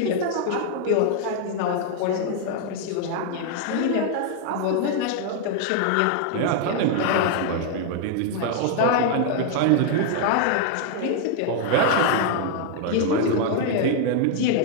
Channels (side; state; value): both; different; correlation 0.00